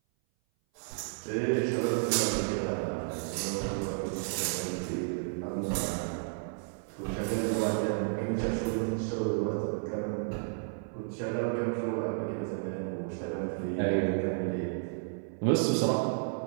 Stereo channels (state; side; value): silent; left; 56 dB below the other